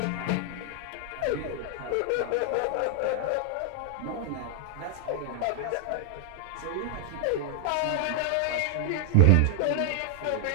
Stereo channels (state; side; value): different; both; correlation 0.00